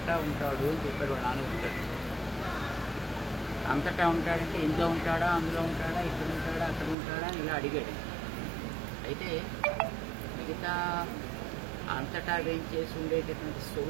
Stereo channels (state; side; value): drops out; left; at 7.0 s